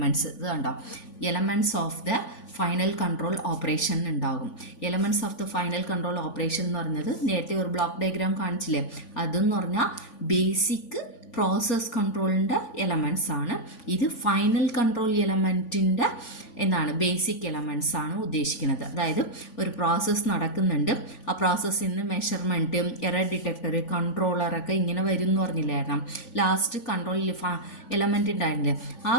ഇത് കണ്ടോ, elements of the final control operation ഉണ്ടാകും. Elements of the final control operation എന്ന് പറഞ്ഞത് നേരത്തെ ഒരു ബ്ലോക്ക് ഡയഗ്രാം കാണിച്ചില്ലേ, അതെന്ന് പറഞ്ഞാൽ ബേസിക് പ്രോസസ് കൺട്രോളിൻ്റെ എലമെൻറ്റ്സ് ആണ്. ഇത് ഫൈനൽ കൺട്രോൾ എലമെൻറ്റിൻ്റെ എന്താണ് ബേസിക് എലമെൻറ്റ്സ് ആണ് ഉദ്ദേശിക്കുന്നത്. അതായത് ഒരു പ്രോസസ്സ് നടക്കുന്നുണ്ട്, ആ പ്രോസസ്സിൽ നിന്ന് മെഷർമെൻറ്റ്, എറർ ഡിറ്റക്ടർ, കൺട്രോളറൊക്കെ ഇങ്ങനെ വരും എന്ന് പറഞ്ഞില്ലായിരുന്നു. ലാസ്റ്റ് കൺട്രോൾ എലമെൻറ്റ് ഉണ്ടായിരുന്നില്ലേ, ആ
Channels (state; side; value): late; right; 3.5 ms